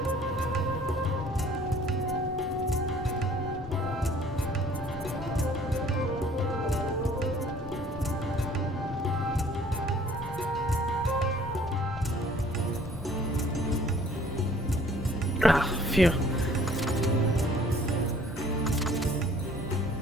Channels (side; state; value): left; noise; rumble, 13 dB below the sound